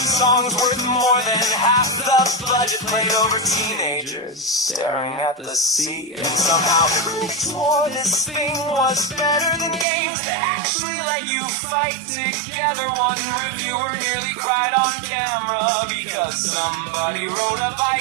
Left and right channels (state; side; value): drops out; left; at 9.9 s